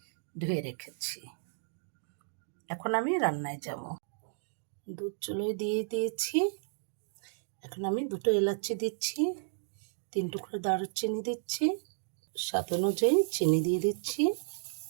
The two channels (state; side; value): silent; left; digital silence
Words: ধুয়ে রেখেছি। এখন আমি রান্নায় যাব। দুধ চুলোয় দিয়ে দিয়েছি। এখন আমি 2টো এলাচি দিচ্ছি, 3 টুকরো দারুচিনি দিচ্ছি, স্বাদ অনুযায়ী চিনি দিয়ে দিচ্ছি।